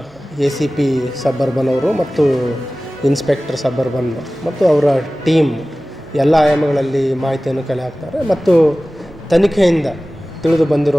ACP ಸಬರ್ಬನ್ ಅವರು ಮತ್ತು ಇನ್ಸ್ಪೆಕ್ಟರ್ ಸಬರ್ಬನ್ ಮತ್ತು ಅವರ ಟೀಮ್ ಎಲ್ಲ ಆಯಾಮಗಳಲ್ಲಿ ಮಾಹಿತಿಯನ್ನು ಕಲೆ ಹಾಕ್ತಾರೆ. ಮತ್ತು ತನಿಖೆಯಿಂದ ತಿಳಿದು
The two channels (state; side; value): normal; both; correlation 0.97